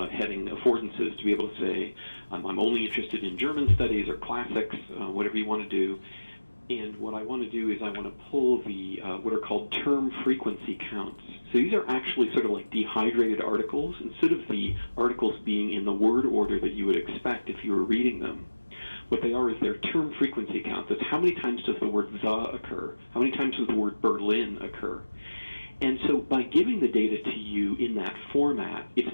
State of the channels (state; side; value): inverted; both; correlation -1.00